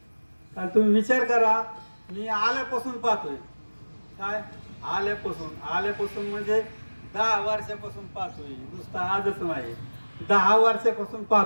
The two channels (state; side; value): inverted; both; correlation -1.00